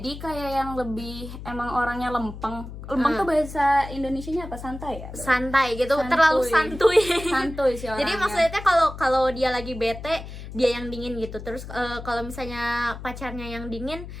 kayak yang lebih emang orangnya lempeng. Lempeng tuh bahasa Indonesianya apa? Santai ya? Santai gitu, Santuy. terlalu santuy. Santuy sih orangnya. Jadi maksudnya kalau dia lagi bete, dia yang dingin gitu. Terus kalau misalnya pacarnya yang dingin,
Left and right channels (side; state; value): left; noise; hum, 11 dB below the sound